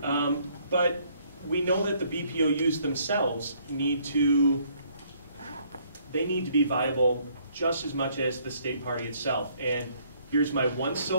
But we know that the BPOUs themselves need to be viable just as much as the state party itself. And here's my one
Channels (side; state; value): both; inverted; correlation -0.65